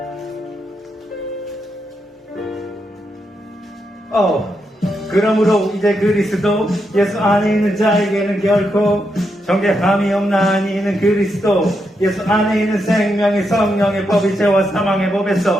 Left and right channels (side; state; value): both; normal; correlation 0.82